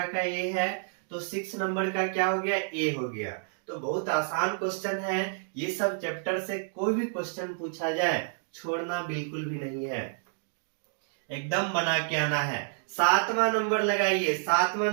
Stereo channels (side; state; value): left; silent; 58 dB below the other